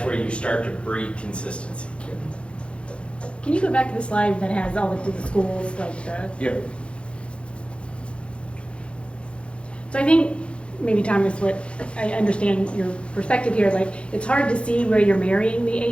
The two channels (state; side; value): late; right; 0.058 ms